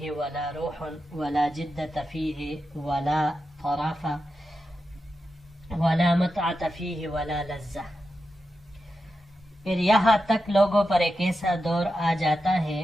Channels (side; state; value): both; normal; correlation 0.89